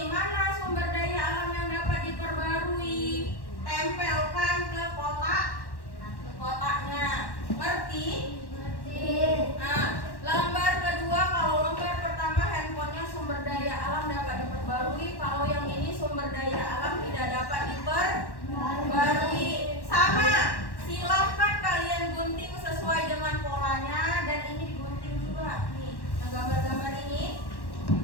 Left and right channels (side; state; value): right; late; 1.1 ms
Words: Mana sumber daya alam yang dapat diperbarui? Tempelkan ke kotaknya. Ngerti? Nah, lembar kedua, kalau lembar pertama handphonenya sumber daya alam dapat diperbarui, kalau yang ini sumber daya alam tidak dapat diperbarui. Sama, silahkan kalian gunting sesuai dengan polanya, dan ini digunting juga. Nih, yang gambar-gambar ini